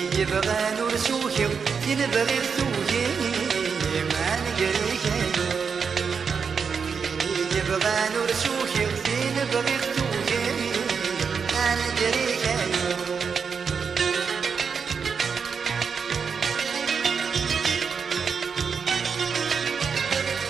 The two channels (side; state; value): left; quieter; 6.0 dB